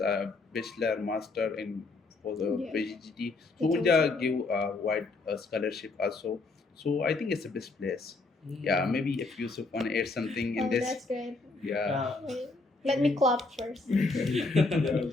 a bachelor, master in for the Yeah. PhD. So Betul, Unja betul. give a wide scholarship also. So I think it's the best place. Yeah, maybe if Yusuf want to add something in Oh, this. that's great. Yeah. Wait, let me clap first.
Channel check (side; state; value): right; quieter; 3.6 dB